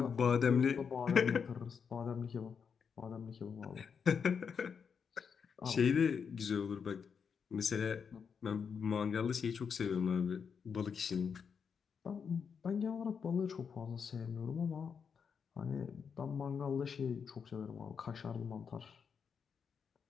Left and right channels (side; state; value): right; quieter; 6.5 dB